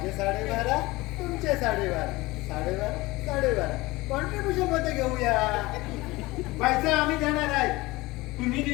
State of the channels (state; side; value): quieter; right; 21.0 dB